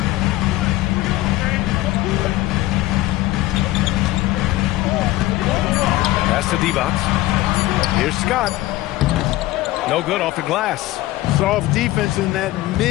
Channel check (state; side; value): quieter; right; 17.1 dB